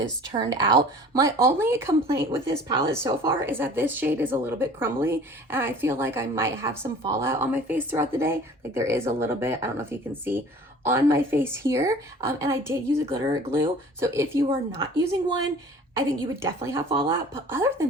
turned out. My only complaint with this palette so far is that this shade is a little bit crumbly and I feel like I might have some fallout on my face throughout the day. Like there is a little bit, I don't know if you can see, on my face here. And I did use a glitter glue. So if you are not using one, I think you would definitely have fallout. But other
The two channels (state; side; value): normal; both; correlation 0.46